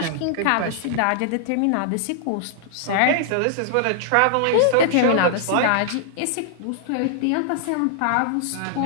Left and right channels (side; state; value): both; different; correlation -0.01